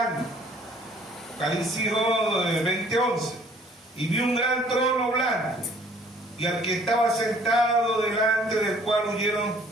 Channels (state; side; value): normal; both; correlation 0.57